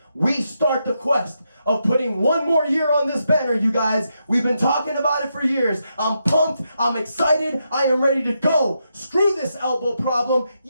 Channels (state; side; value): inverted; both; correlation -0.83